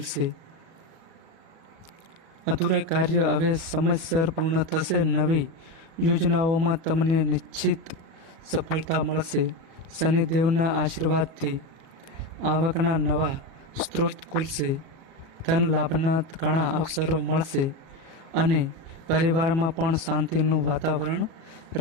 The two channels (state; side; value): late; left; 37 ms